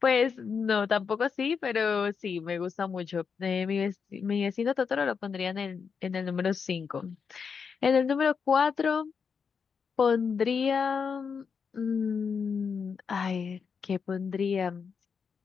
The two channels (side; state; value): right; quieter; 6.0 dB